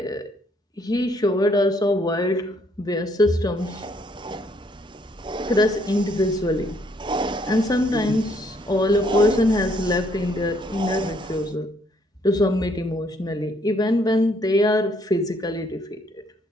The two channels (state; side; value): normal; both; correlation 0.68